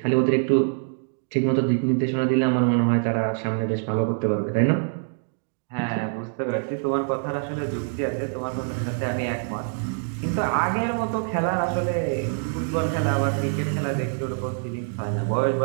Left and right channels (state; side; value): silent; left; digital silence